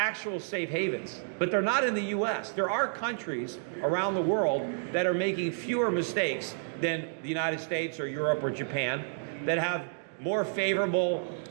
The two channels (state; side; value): silent; left; digital silence